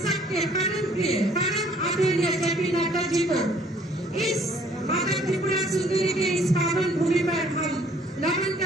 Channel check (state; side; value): normal; both; correlation 0.59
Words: सबके परम प्रिय परम आदरणीय जेपी नड्डा जी को इस माता त्रिपुरा सुंदरी के इस पावन भूमि पर हम नमन